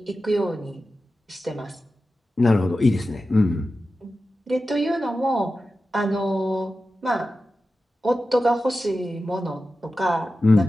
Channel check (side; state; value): both; normal; correlation 0.93